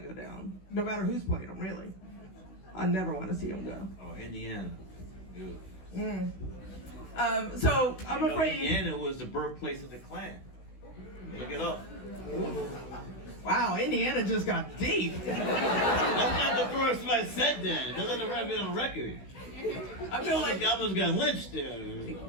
down. No matter who's playing them, really. I never want to see them go. Oh, Indiana. Ew. So I'm afraid. Indiana was the birthplace of the Klan. Look it up. Wow, Indiana just got deep. That's not the first time I said that. That's not on record. I feel like I almost got lynched there.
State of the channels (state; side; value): late; right; 16 ms